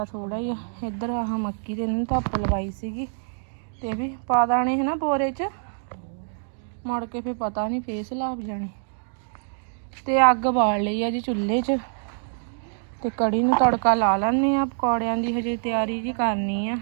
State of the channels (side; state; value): left; silent; digital silence